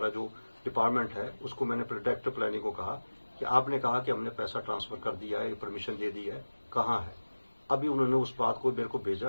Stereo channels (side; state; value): both; inverted; correlation -1.00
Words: जो डिपार्टमेंट है, उसको मैंने डायरेक्टर प्लानिंग को कहा कि आपने कहा कि हमने पैसा ट्रांसफर कर दिया है, परमिशन दे दी है, कहाँ है। अभी उन्होंने उस बात को मेरे को